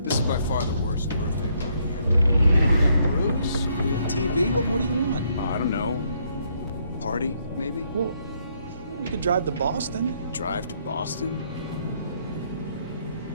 by far the worst birthday party ever. We got Bruce, we got TV, what more do you want? I don't know. Party, maybe? Well, we could drive to Boston. Drive to Boston?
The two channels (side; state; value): both; inverted; correlation -0.71